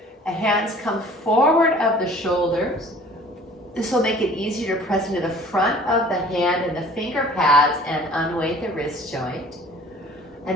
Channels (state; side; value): normal; both; correlation 0.49